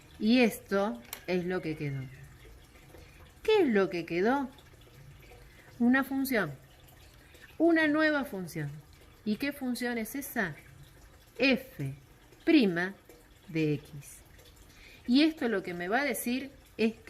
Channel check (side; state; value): both; identical; correlation 1.00